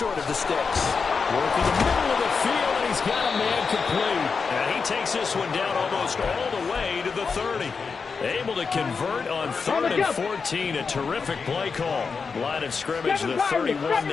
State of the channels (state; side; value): quieter; right; 5.2 dB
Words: of the sticks. Working the middle of the field, and he's got a man complete. And he takes this one down almost all the way to the 30. Able to convert on 3rd and 14. A terrific play call. Line of scrimmage, the 31